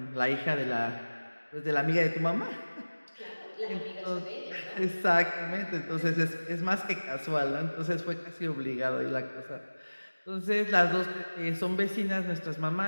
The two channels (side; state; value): both; inverted; correlation -1.00